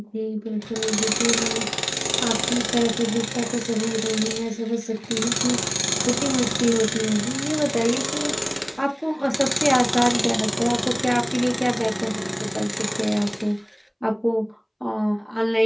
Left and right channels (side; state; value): both; identical; correlation 1.00